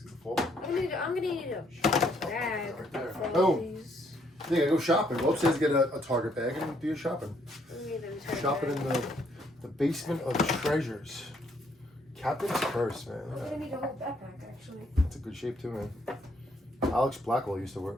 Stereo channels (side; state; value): both; normal; correlation 0.69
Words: the pole? I'm gonna need a bag Right there. for Oh. all these. Yeah, go shopping. Go upstairs, get a Target bag, and do your shopping. I need them to Shopping in the basement of treasures. Captain's Curse, man. I'm gonna need a whole backpack actually. It's a good shape too, man. Alex Blackwell used to wear